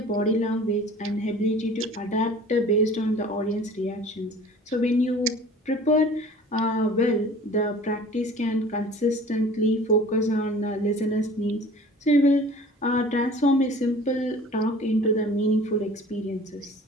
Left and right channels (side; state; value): both; normal; correlation 0.46